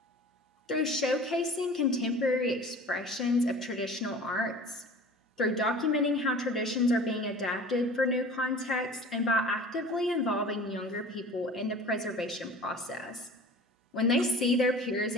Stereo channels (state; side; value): normal; both; correlation 0.42